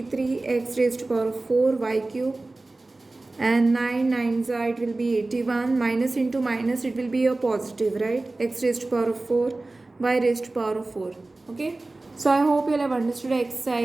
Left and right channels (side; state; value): left; quieter; 3.1 dB